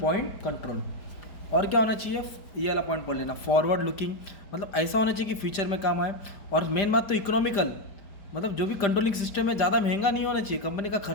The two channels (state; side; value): late; right; 5.1 ms